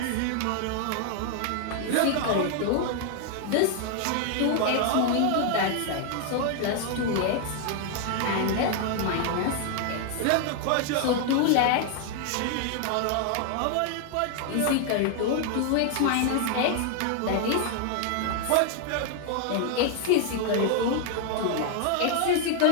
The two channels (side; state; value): both; different; correlation 0.00